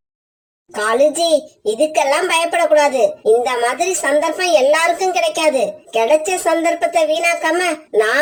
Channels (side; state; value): both; identical; correlation 1.00